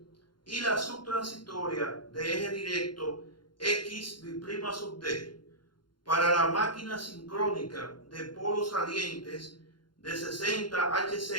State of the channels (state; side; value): late; right; 0.71 ms